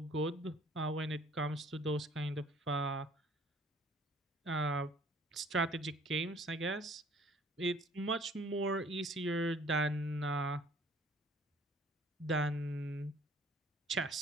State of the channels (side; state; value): both; normal; correlation 0.56